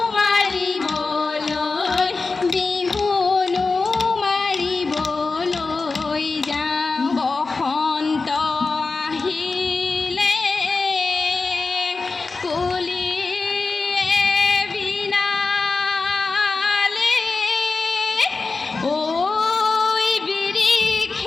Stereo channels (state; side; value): quieter; right; 4.0 dB